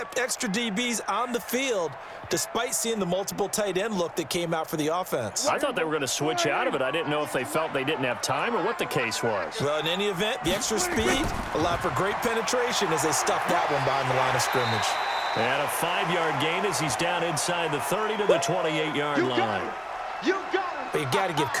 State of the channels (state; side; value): identical; both; correlation 1.00